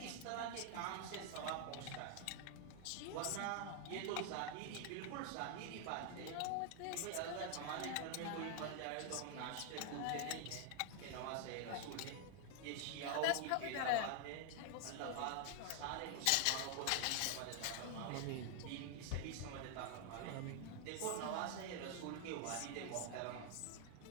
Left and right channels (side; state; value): both; different; correlation 0.00